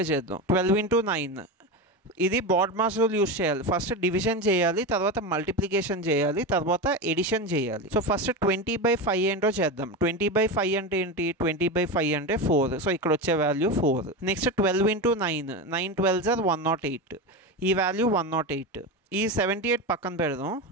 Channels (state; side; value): normal; both; correlation 0.19